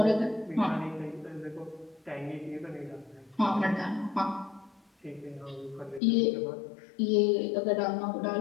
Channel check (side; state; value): right; drops out; at 6.0 s